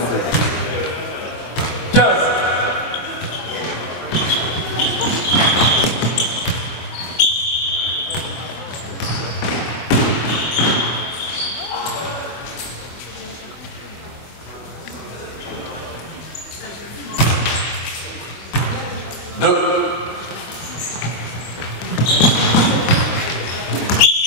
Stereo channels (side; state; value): right; late; 24 ms